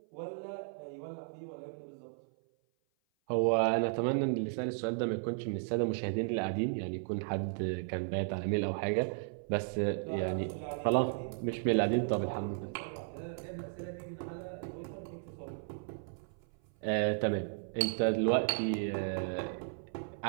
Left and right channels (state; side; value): silent; left; 55 dB below the other